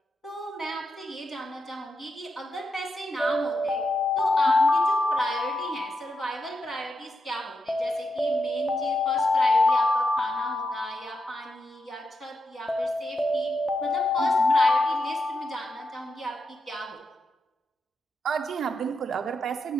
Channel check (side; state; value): both; normal; correlation 0.85